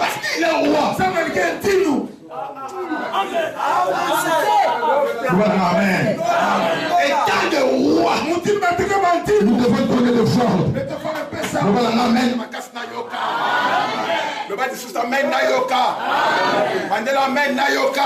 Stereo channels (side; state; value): both; identical; correlation 1.00